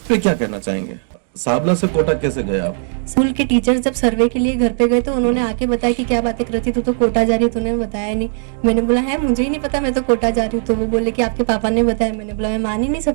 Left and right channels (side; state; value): left; silent; 68 dB below the other